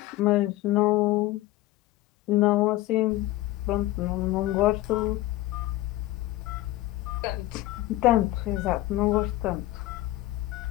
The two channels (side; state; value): right; quieter; 16.9 dB